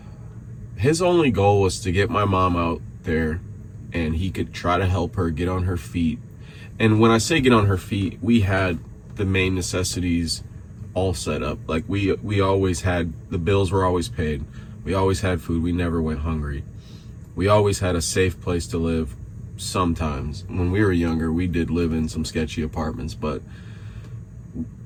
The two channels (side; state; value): both; identical; correlation 1.00